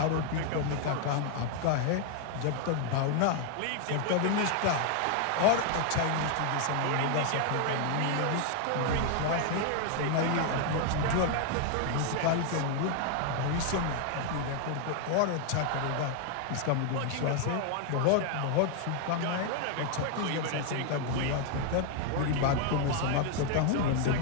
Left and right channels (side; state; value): both; different; correlation 0.00